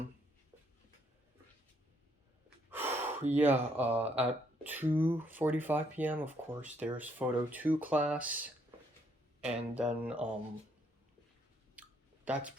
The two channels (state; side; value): normal; both; correlation 0.71